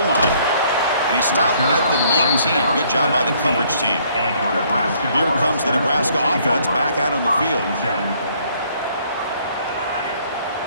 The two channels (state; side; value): inverted; both; correlation -0.64